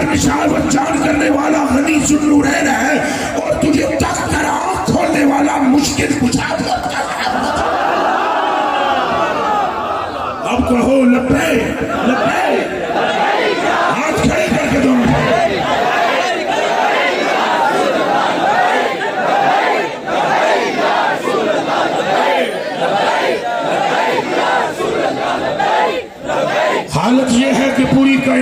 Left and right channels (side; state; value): both; identical; correlation 1.00